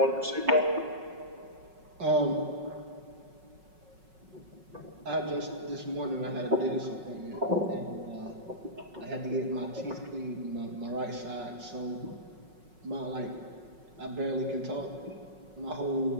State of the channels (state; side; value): late; left; 5.4 ms